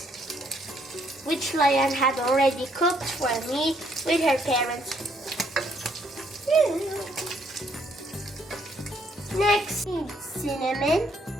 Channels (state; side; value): normal; both; correlation 0.69